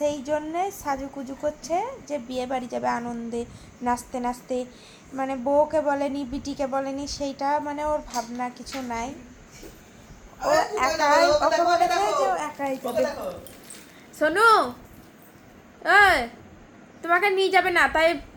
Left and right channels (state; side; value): identical; both; correlation 1.00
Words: জন্যে সাজুকুজু করছে যে বিয়ে বাড়ি যাবে আনন্দে, নাচতে নাচতে। মানে বউকে বলেনি, বিটিকে বলেনি, সেইটা মানে ওর ভাবনা কিছু নাই। ও একাই, ওকে বলেছে যে ও একাই যাবে। সোনু, এই তোমাকে নিয়ে যাবে না, তাই